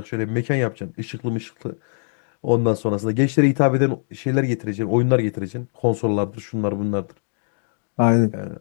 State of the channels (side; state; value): right; silent; 64 dB below the other